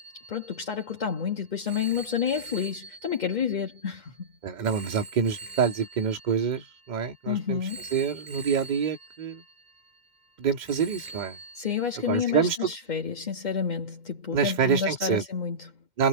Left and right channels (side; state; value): left; late; 2.1 ms